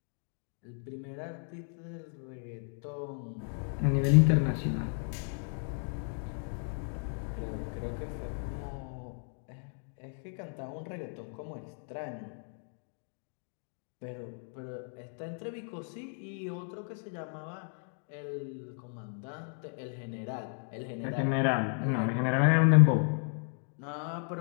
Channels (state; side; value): silent; right; 55 dB below the other